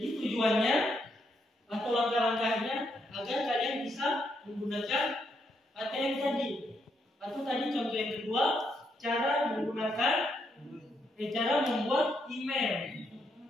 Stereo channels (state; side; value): normal; both; correlation 0.77